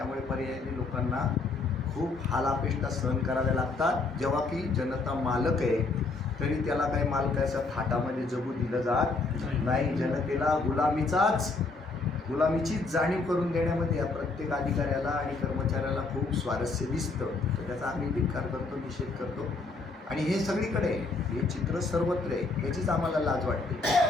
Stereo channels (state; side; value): quieter; right; 3.7 dB